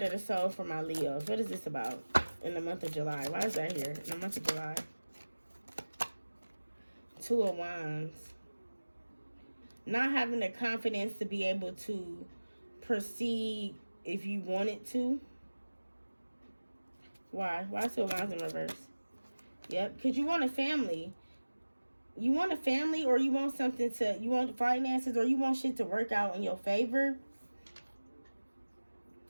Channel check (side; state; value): both; inverted; correlation -1.00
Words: of the Soul for my Leos? What is this about in the month of July? Why is that here in the month of July? 2 of Wands. Not having the confidence to be able to proceed if you wanted to. Why? Why 2 of Wands in reverse? Yep, because you want a family. You want a family, or you want you want finances, or you want shit to work out in your favor.